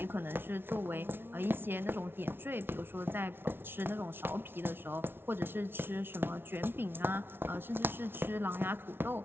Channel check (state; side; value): late; left; 0.11 ms